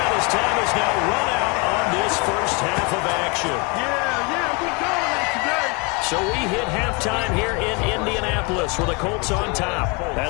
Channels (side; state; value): right; quieter; 30.4 dB